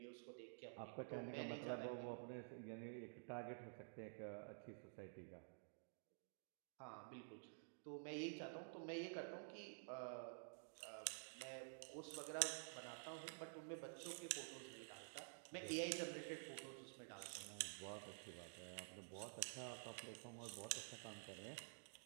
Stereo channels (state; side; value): silent; left; digital silence